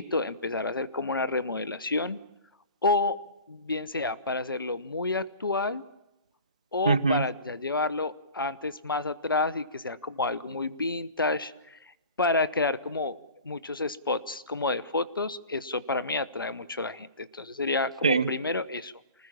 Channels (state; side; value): inverted; both; correlation -0.40